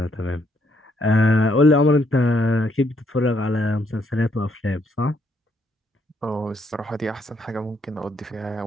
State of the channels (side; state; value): both; normal; correlation 0.72